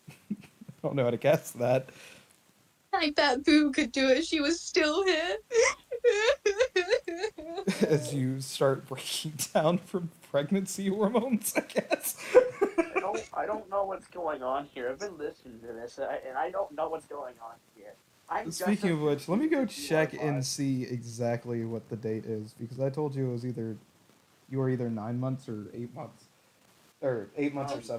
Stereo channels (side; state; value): both; identical; correlation 1.00